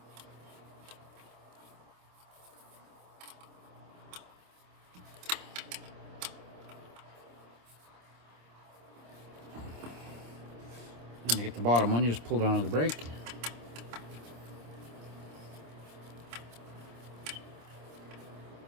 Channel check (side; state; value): left; late; 26 ms